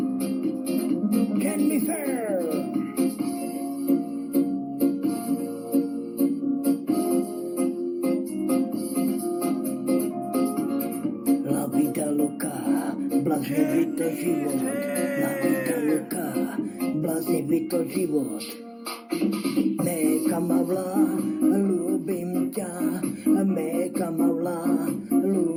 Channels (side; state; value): both; identical; correlation 1.00